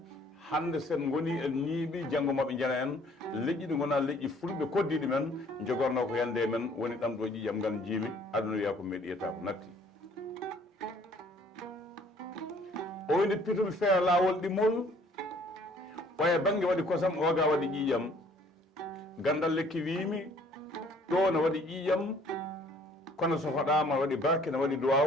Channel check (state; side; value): normal; both; correlation 0.58